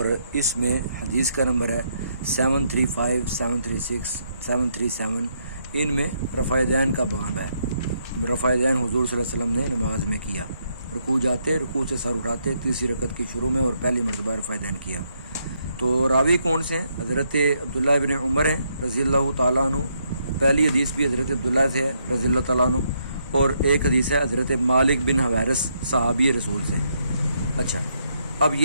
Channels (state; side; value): inverted; both; correlation -0.76